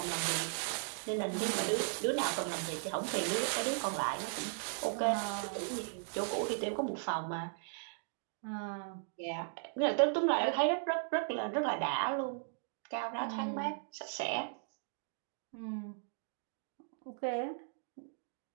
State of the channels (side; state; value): left; silent; digital silence